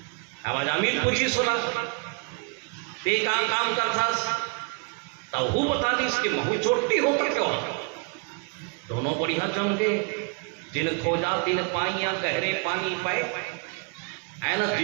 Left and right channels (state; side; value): quieter; left; 36.9 dB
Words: अब जामिल पूछी सुना ते काम करता, तब वो बता दी इसके महू चोटती हो तो क्यों। दोनों बढ़िया जम गए, जिन खोजा तिन पाइया गहरे पानी पाए, है ना,